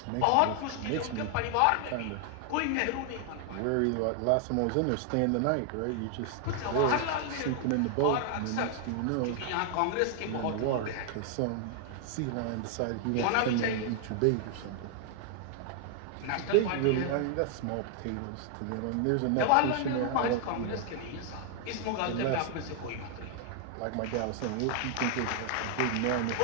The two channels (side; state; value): both; different; correlation 0.00